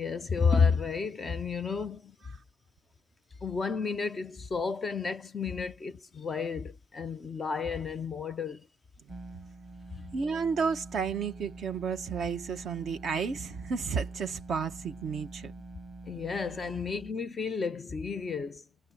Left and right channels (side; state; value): both; normal; correlation 0.73